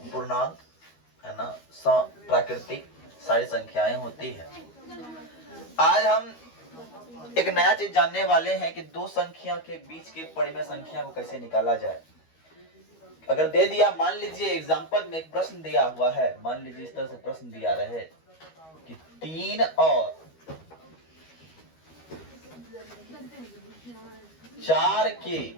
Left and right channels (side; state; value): right; late; 13 ms